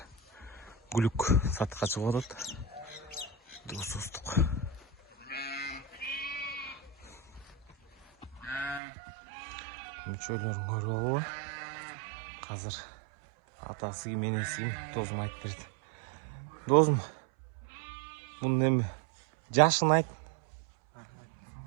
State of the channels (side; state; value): left; drops out; at 8.8 s